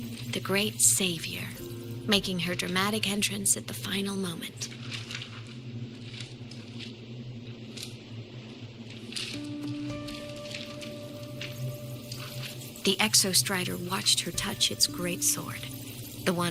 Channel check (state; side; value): identical; both; correlation 1.00